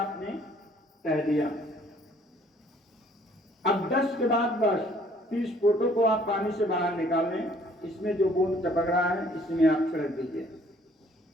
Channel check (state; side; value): normal; both; correlation 0.60